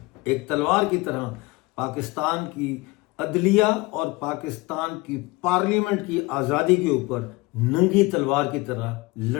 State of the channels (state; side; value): quieter; right; 23.2 dB